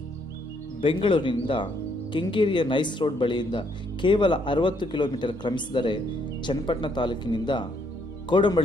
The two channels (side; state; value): both; normal; correlation 0.70